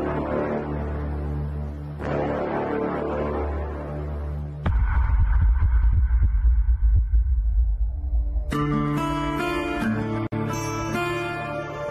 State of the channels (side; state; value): both; identical; correlation 1.00